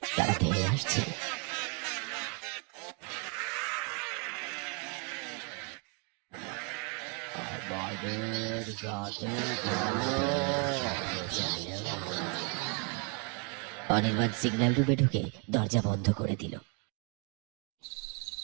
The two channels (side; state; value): left; quieter; 36.2 dB